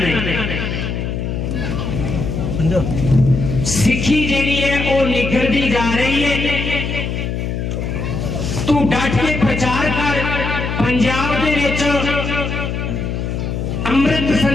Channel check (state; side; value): noise; left; hum, 3 dB below the sound